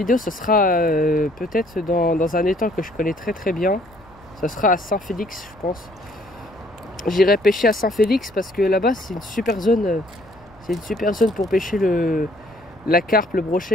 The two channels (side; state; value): left; noise; rumble, 27 dB below the sound